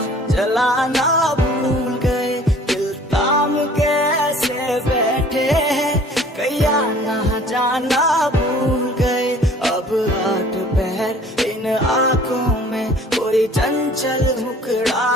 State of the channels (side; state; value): both; normal; correlation 0.52